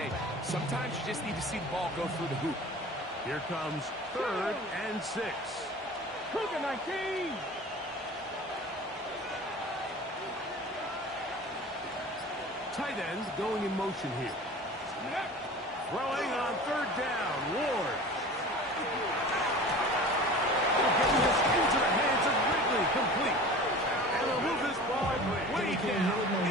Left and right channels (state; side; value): normal; both; correlation 0.39